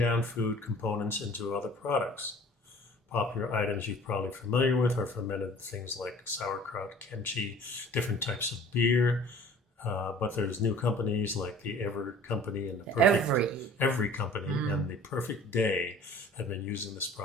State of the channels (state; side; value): normal; both; correlation 0.48